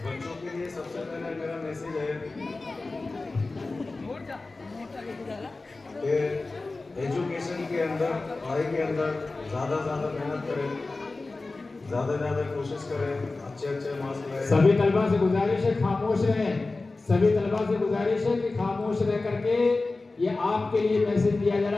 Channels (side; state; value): right; quieter; 3.4 dB